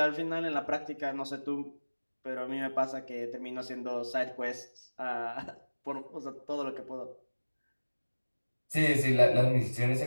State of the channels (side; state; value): both; inverted; correlation -1.00